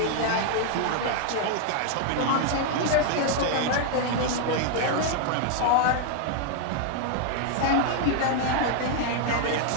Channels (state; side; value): different; both; correlation 0.00